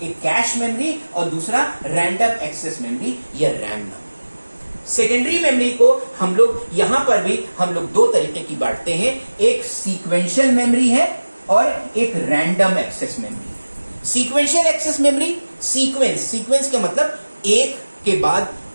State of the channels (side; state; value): both; inverted; correlation -1.00